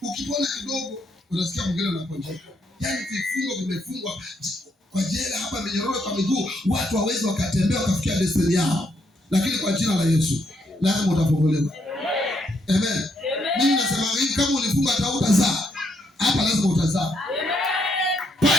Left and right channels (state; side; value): normal; both; correlation 0.75